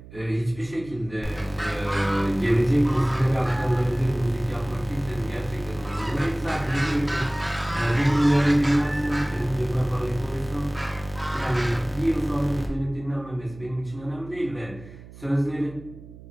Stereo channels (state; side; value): noise; right; hum, 18 dB below the sound